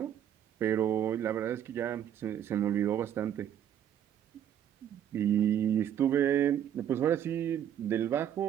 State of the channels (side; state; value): left; quieter; 10.0 dB